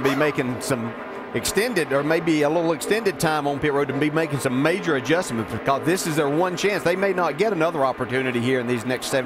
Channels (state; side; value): identical; both; correlation 1.00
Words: to be making some extended or maybe a little extended time on pit road to be making some major adjustments because this is their one chance. They may not get another opportunity here in these next